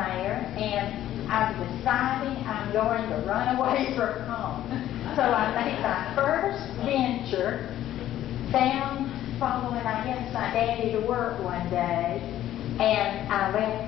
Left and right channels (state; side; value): quieter; right; 12.7 dB